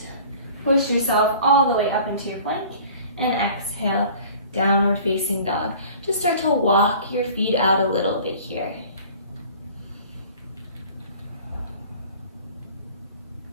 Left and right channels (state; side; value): inverted; both; correlation -0.46